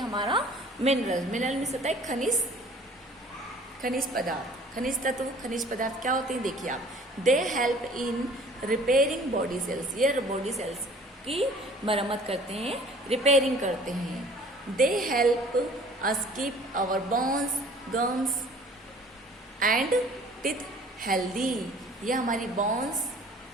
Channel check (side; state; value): both; normal; correlation 0.51